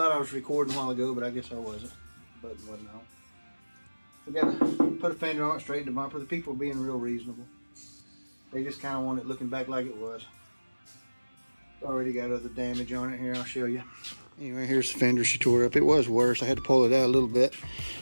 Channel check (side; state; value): both; inverted; correlation -1.00